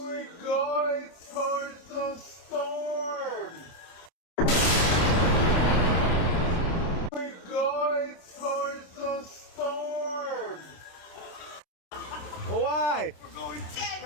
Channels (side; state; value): right; late; 27 ms